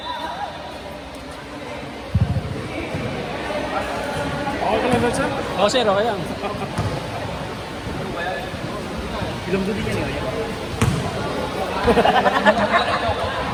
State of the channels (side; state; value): both; identical; correlation 1.00